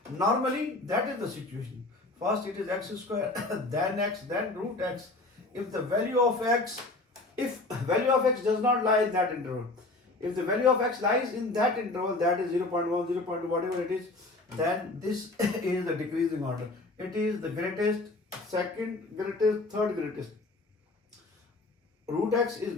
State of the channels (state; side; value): quieter; right; 3.0 dB